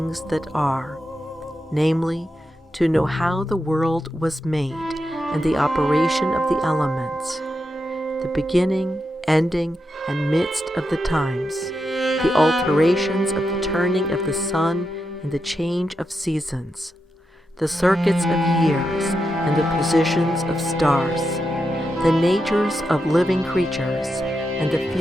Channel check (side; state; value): both; normal; correlation 0.86